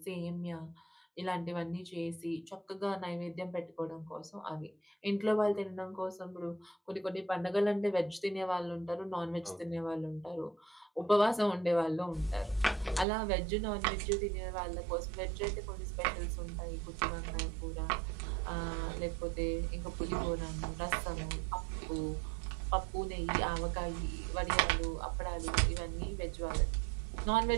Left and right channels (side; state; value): left; drops out; at 13.1 s